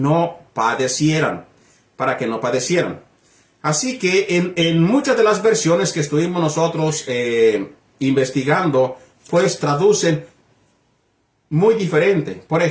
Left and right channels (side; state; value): both; identical; correlation 1.00